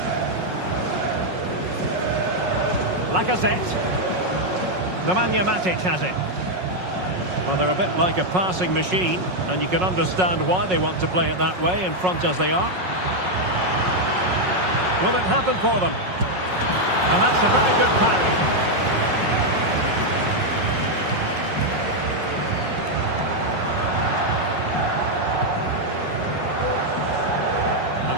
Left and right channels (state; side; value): late; left; 5.5 ms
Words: Lacazette. Nemanja Matic has it. Well, they're a bit like a passing machine, and you can understand why they want to play it that way, in front as they are. Will it happen for them? And that's a very good parry. An